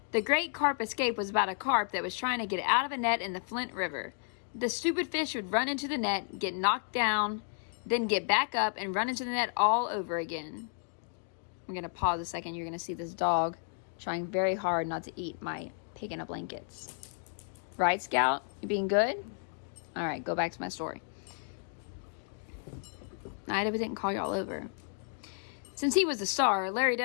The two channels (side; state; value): right; silent; 56 dB below the other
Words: The Great Carp Escape was about a carp that was trying to get out of a net in the Flint River. The stupid fish would run into the net, get knocked down, then get back up and run into the net all over again. I'm going to pause a second. You're going to see this dog trying very hard not to eat my pig in a blankets. Right, Scout? You being good? All right, go back to my story. I didn't call y'all over. Since he was the star, Larry